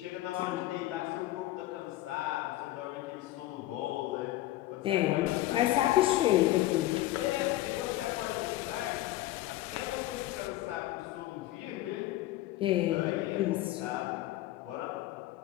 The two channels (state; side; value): quieter; right; 15.8 dB